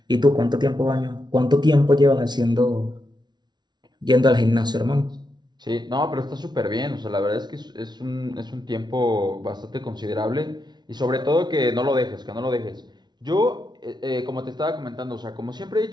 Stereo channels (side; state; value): left; late; 0.20 ms